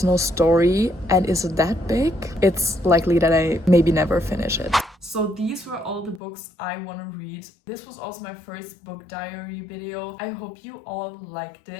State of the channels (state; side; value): drops out; right; at 6.2 s